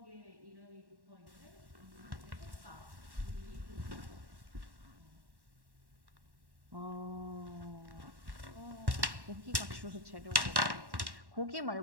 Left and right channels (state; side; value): late; left; 1.1 ms